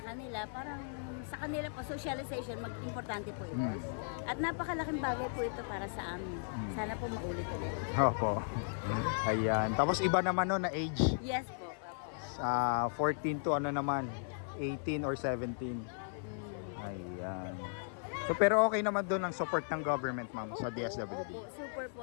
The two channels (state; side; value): silent; right; 54 dB below the other